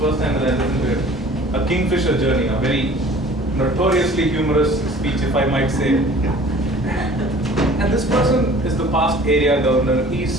time that I listened to it. A Kingfisher journey, a very notoriously humorous speech, if I might say. And this person is the past area governor.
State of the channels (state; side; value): normal; both; correlation 0.48